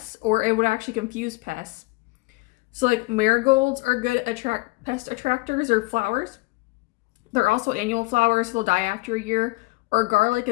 or it would actually confuse pests. So like marigolds are good pest attractors or flowers. They're also annual flowers, so they'll die after a year. Or garlic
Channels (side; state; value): right; quieter; 23.7 dB